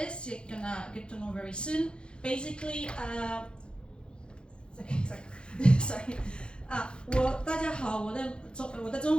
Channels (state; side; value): late; right; 0.053 ms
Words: you're gonna get to know very soon. Basically, sorry. 大家好，我的中